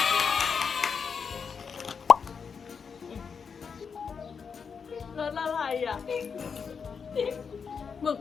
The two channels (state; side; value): quieter; right; 6.0 dB